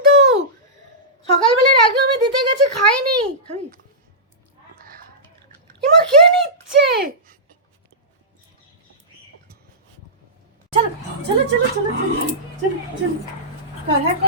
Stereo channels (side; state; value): both; normal; correlation -0.17